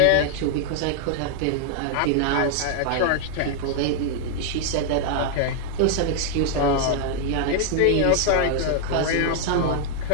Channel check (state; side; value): different; both; correlation 0.00